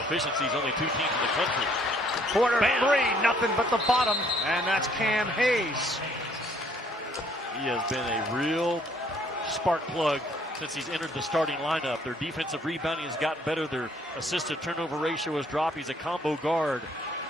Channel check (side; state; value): both; normal; correlation 0.64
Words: only 2 teams in the country. Quarter 3, nothing but the bottom, and that's Cam Hayes. He has been a real spark plug since he's entered the starting lineup. Their defensive rebounding has gotten better. Their assisted turnover ratio has dropped. He's a combo guard.